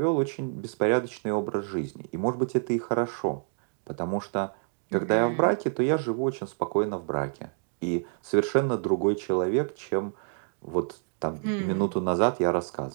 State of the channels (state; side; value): silent; left; 59 dB below the other